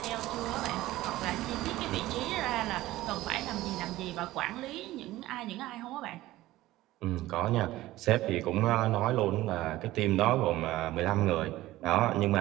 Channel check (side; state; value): left; quieter; 16.5 dB